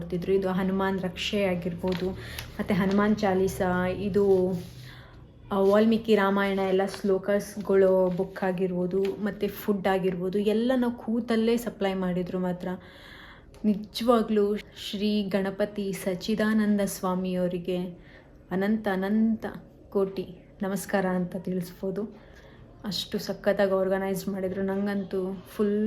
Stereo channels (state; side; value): identical; both; correlation 1.00